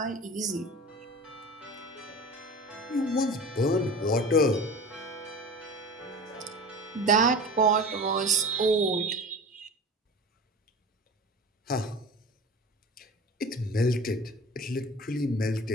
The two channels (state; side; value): normal; both; correlation 0.35